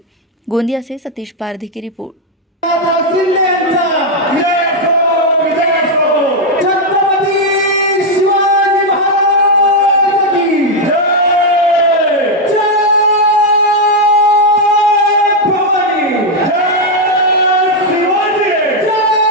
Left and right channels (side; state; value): both; normal; correlation 0.01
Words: गोंदिया से सतीश पारधी की रिपोर्ट।